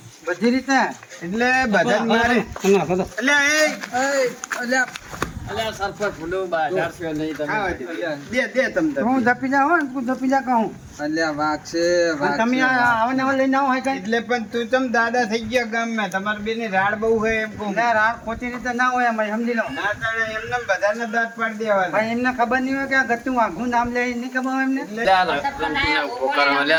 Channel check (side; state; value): both; identical; correlation 1.00